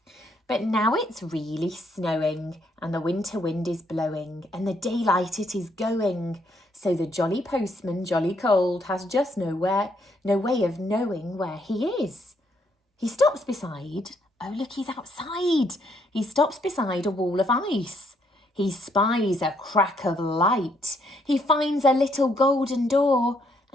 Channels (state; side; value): normal; both; correlation 0.72